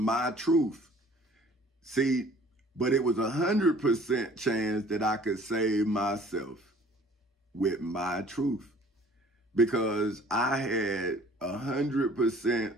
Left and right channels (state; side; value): normal; both; correlation 0.52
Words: truth. See, but it was 100% chance that I could save myself with my truth, because I had 100%